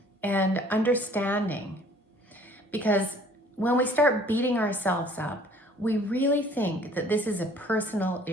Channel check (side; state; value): both; normal; correlation 0.54